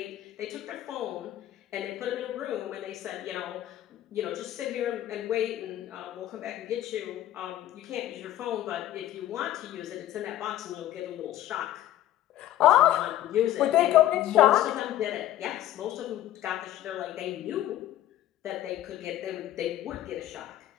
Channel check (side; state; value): right; quieter; 13.3 dB